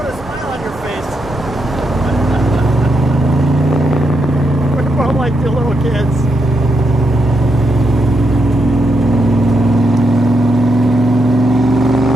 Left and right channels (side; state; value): both; normal; correlation 0.82